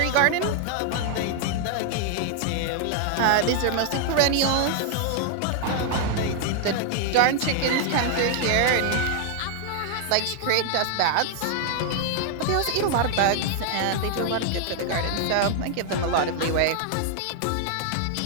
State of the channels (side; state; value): both; different; correlation 0.00